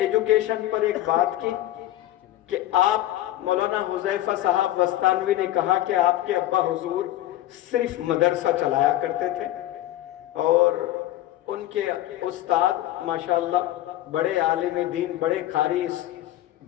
پر ایک بات کی کہ آپ، مولانا حذیفہ صاحب وستانوی نے کہا کہ آپ کے ابا حضور صرف مدرسہ چلایا کرتے تھے، اور ان کے استاد ماشاءاللہ بڑے عالم دین، بڑے قاری اس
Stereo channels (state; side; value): quieter; right; 14.3 dB